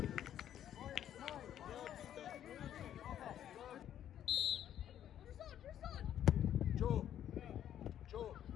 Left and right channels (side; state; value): right; quieter; 10.6 dB